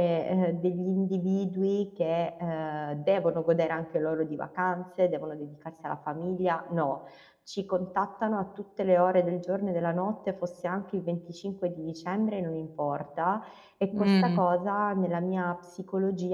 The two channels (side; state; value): both; identical; correlation 1.00